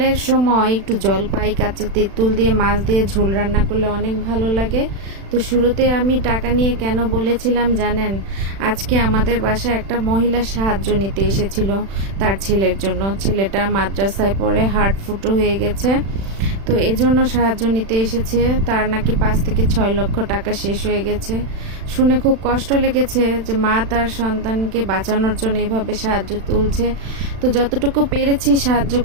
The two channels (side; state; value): left; late; 36 ms